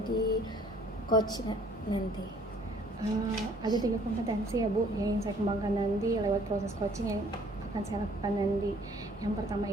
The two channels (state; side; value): normal; both; correlation 0.58